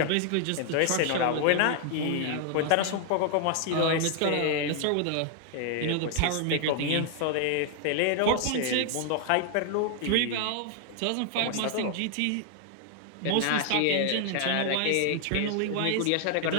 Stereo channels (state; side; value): different; both; correlation 0.00